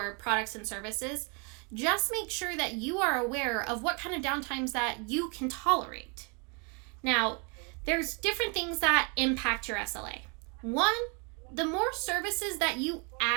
products and services, just make sure that you are aware of what kind of downtimes that you can tolerate. Now, there's different things that impact your SLA. One, the more services that you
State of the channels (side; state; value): left; quieter; 34.2 dB